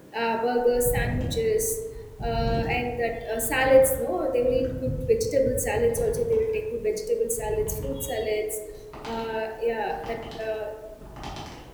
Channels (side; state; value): both; identical; correlation 1.00